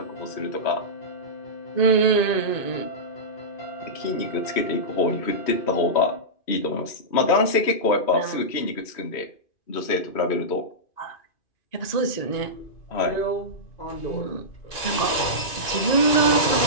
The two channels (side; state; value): right; late; 2.5 ms